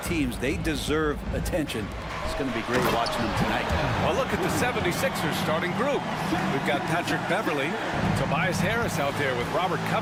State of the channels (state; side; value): identical; both; correlation 1.00